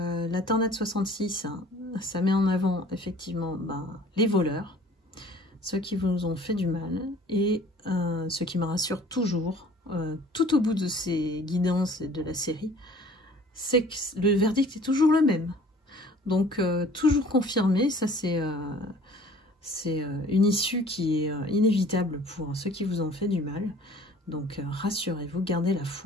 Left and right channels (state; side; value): normal; both; correlation 0.50